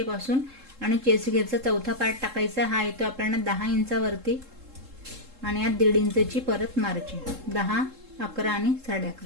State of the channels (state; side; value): late; left; 3.7 ms